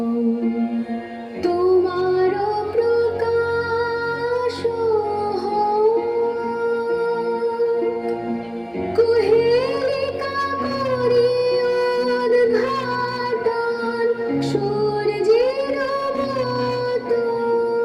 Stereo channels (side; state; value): both; identical; correlation 1.00